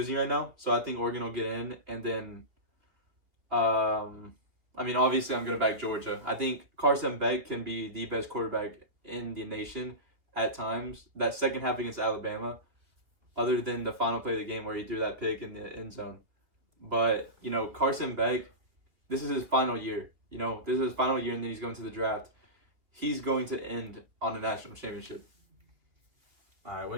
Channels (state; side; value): late; left; 3.0 ms